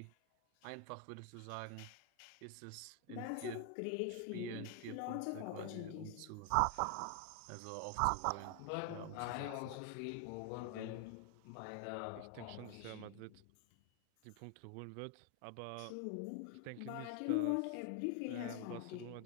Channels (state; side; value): different; both; correlation 0.00